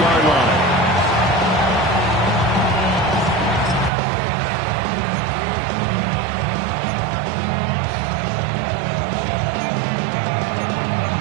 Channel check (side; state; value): left; drops out; at 3.9 s